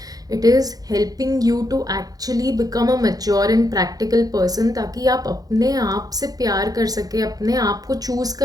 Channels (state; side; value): late; left; 0.18 ms